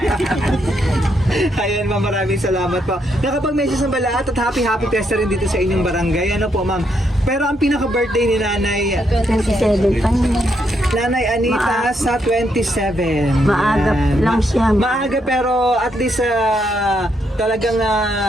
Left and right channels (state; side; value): normal; both; correlation 0.77